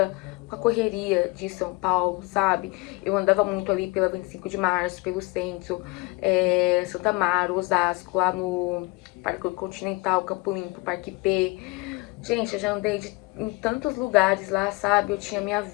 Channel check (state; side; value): quieter; right; 25.4 dB